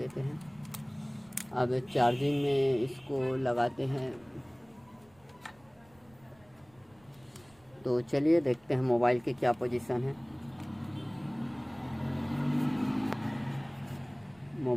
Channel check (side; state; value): right; noise; rumble, 30 dB below the sound